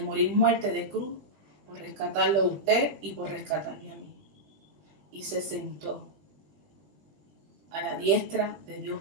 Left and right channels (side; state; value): left; late; 19 ms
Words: muerte de cruz por rescatarlo a usted y por rescatarme a mí. Y se sentó a la diestra de Dios